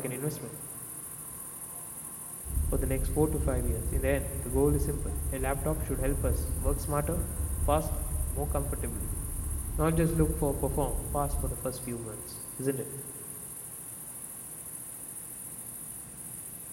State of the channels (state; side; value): identical; both; correlation 1.00